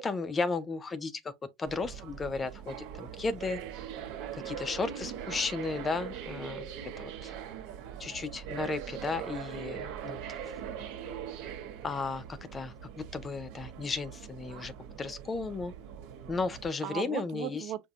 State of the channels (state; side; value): normal; both; correlation 0.66